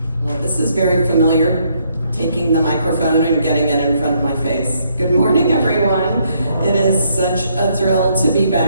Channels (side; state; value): both; inverted; correlation -0.71